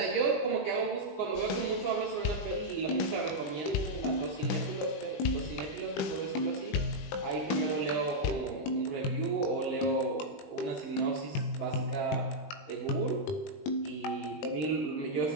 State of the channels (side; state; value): right; late; 20 ms